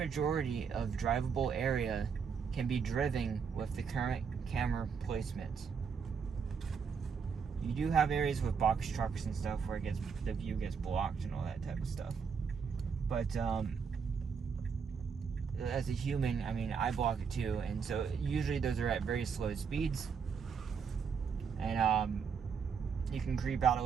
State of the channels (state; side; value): quieter; left; 6.2 dB